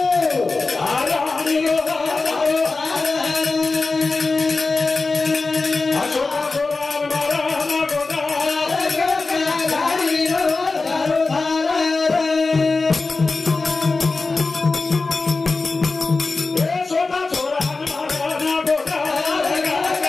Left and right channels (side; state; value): right; quieter; 3.8 dB